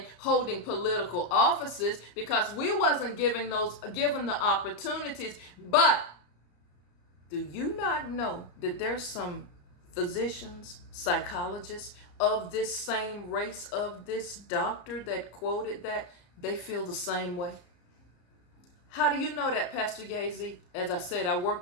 holding political offices because we wasn't given the opportunities. But do you not know that there's some physicians, psychologists of this same race, of this doctor that quoted that, they feel the same way? How do you know that, Pastor Gazy? As I said, I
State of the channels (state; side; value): late; right; 34 ms